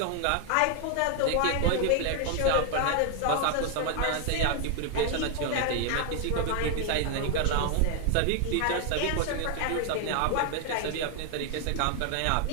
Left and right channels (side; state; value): both; different; correlation 0.00